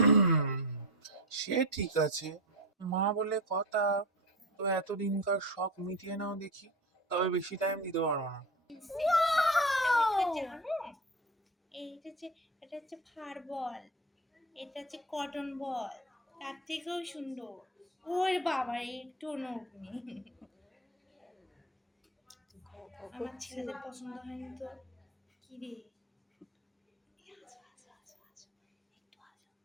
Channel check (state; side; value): normal; both; correlation 0.25